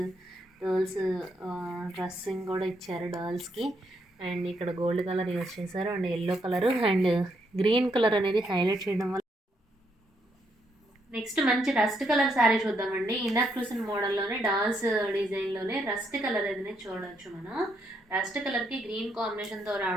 డ్రెస్సింగ్ కూడా ఇచ్చారు డర్ల్స్కి. అండ్ ఇక్కడ గోల్డ్ కలర్ యూజ్ చేశారు and yellow colour and green colour అనేది హైలైట్ చేయడం వల్ల. నెక్స్ట్ మంచి రస్ట్ కలర్ శారీ చూద్దామండి. ఇందాక చూసిన మోడల్లోనే డాల్స్ డిజైన్లోనే రస్ట్ కలర్ అనేది చూడవచ్చు మనం. రస్ట్ కలర్కి గ్రీన్ కాంబినేషన్తో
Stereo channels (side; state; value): both; normal; correlation 0.76